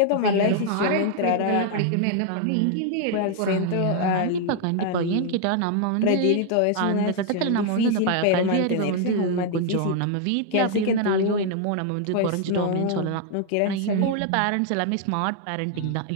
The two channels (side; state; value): both; different; correlation 0.00